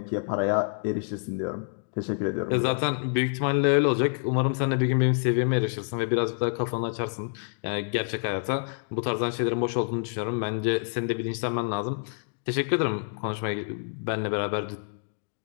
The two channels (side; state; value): right; silent; digital silence